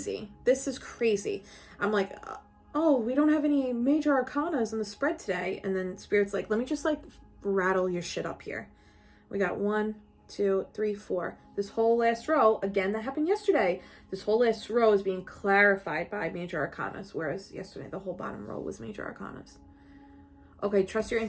This is crazy. I'm like, oh, we don't have any major arcanas in the spread today. And then Spirit's like, let me just like rattle your shit up here. We got 1, 2, 3, 4. This whole last row, again, that happened yesterday. This whole last row is being clarified by major arcanas, whereas yesterday the whole bottom row was major arcanas. Okay, trust your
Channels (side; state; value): both; identical; correlation 1.00